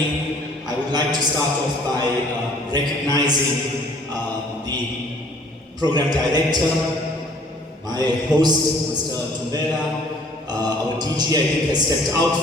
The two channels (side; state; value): both; normal; correlation 0.56